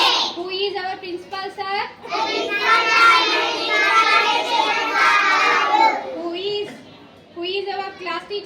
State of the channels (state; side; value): identical; both; correlation 1.00